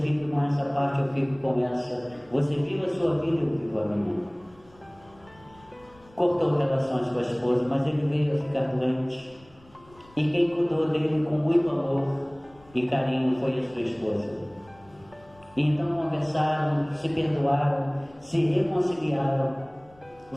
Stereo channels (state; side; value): noise; left; rumble, 28 dB below the sound